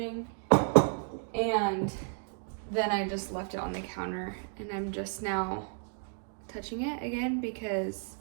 and then I just left it on the counter and I'm just now touching it again because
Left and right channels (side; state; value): left; silent; 56 dB below the other